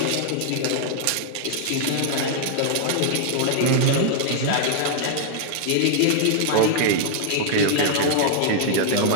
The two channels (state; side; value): different; both; correlation -0.01